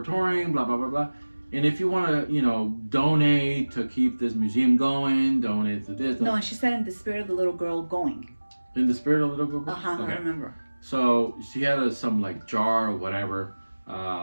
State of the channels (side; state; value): both; inverted; correlation -1.00